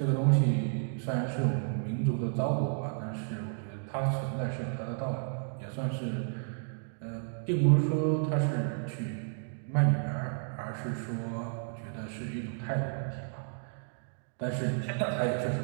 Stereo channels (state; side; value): silent; left; digital silence